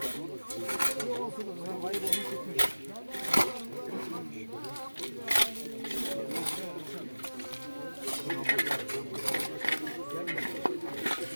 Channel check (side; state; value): both; inverted; correlation -1.00